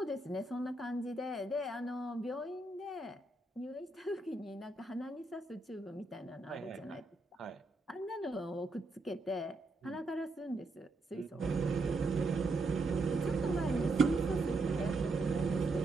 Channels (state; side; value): quieter; left; 3.1 dB